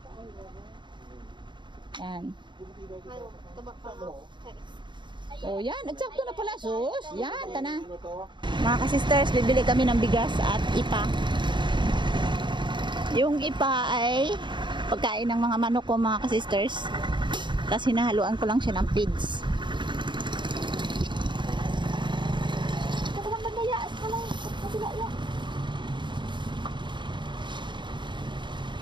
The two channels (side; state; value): left; late; 0.23 ms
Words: Yan. Tabak pa ako. Oh, yan. Eksakto na pala. Sus. Yan, tana. Ano to? Mga ka-sisters, bibili kami ng bigas at ipa. Yung ipa ay pagkain ng mga manok ko, mga ka-sisters. Tapos hinahaluan ko lang siya ng feeds.